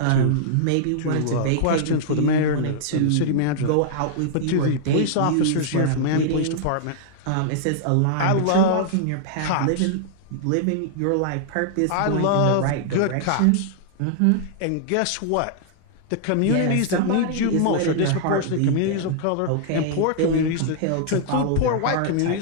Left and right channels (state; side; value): different; both; correlation -0.01